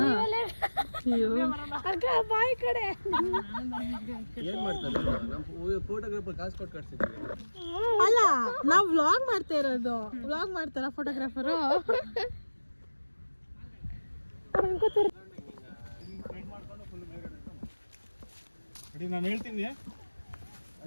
ಬಾಯಿ ಕಡೆ ಏನ್ ಮಾಡ್ತಾರೆ ನಮ್ಮ ಫೋಟೋಗ್ರಾಫರ್ ಕಾಸು ಕೊಟ್ಟು ಕಟ್ಸಿದ್ವಿ. ಅಲ್ಲ, ನಾವು ವ್ಲಾಗ್ ಮಾಡ್ತಾ ಇರೋದು. ವ್ಲಾಗ್ ಮಾಡ್ತಾರ ಫೋಟೋಗ್ರಾಫರು. ರೆಡಿ, ನಾನು ಹೇಳ್ತೀನಿ,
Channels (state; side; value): inverted; both; correlation -1.00